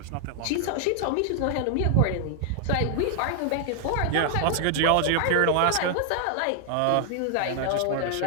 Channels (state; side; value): different; both; correlation 0.00